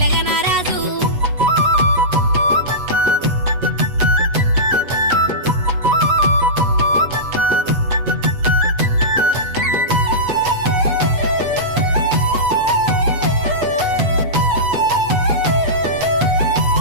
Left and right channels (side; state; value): left; late; 8.2 ms